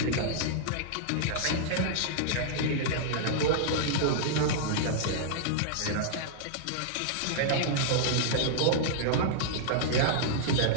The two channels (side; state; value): both; different; correlation -0.01